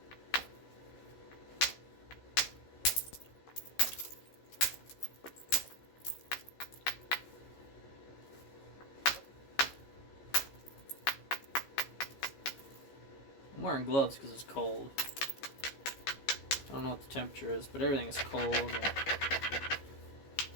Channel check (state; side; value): late; right; 15 ms